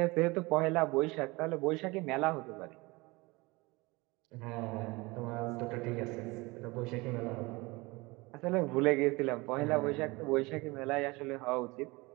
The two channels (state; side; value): quieter; left; 23.8 dB